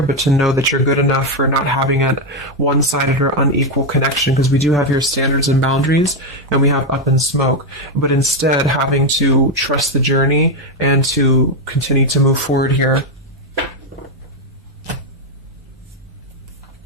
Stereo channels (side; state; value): both; normal; correlation 0.06